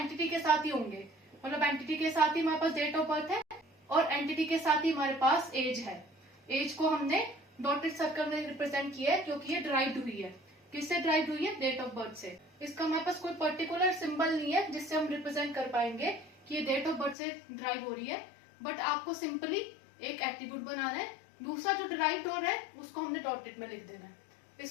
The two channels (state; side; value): drops out; right; at 17.2 s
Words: के साथ ही होंगे, मतलब एंटिटी के साथ ही हमारे पास डेट ऑफ बर्थ है और एंटिटी के साथ ही हमारे पास एज है। एज को हमने डॉटेड सर्कल में रिप्रेजेंट किया है क्योंकि ये ड्राइव्ड हुई है। किससे ड्राइव हुई है, डेट ऑफ बर्थ से। इसका हमारे पास कोई पर्टिकुलर सिंबल नहीं है जिससे हम रिप्रेजेंट कर पाएंगे कि ये डेट ऑफ बर्थ से ड्राइव हो रही है, बट आपको सिंपली एक एट्रीब्यूट बनाना है, दूसरा जो ड्राइव हो रहा है उसको हमने डॉटेड में लिख देना है।